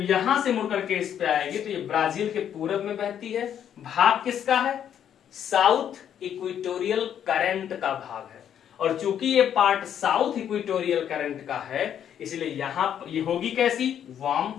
यहां से मुड़ करके इस पे आएगी तो ये ब्राजील के पूरब में बहती है, भाग किसका है, साउथ इक्वेटोरियल करंट का भाग है। और चूंकि ये पार्ट साउथ इक्वेटोरियल करंट का है इसलिए यहां ये होगी कैसी, वार्म।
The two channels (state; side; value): quieter; right; 9.4 dB